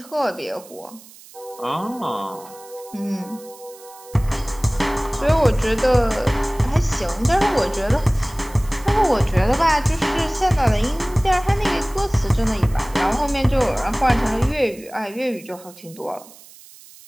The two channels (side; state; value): right; noise; hiss, 21 dB below the sound